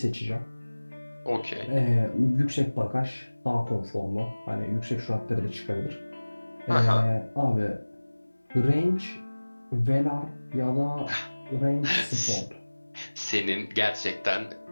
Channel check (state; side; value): inverted; both; correlation -1.00